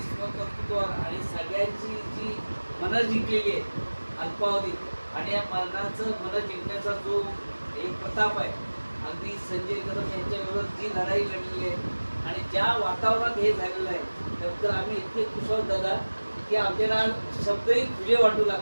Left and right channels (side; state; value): both; inverted; correlation -1.00